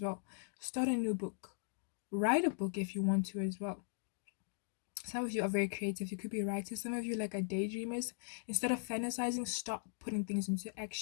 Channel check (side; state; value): right; silent; digital silence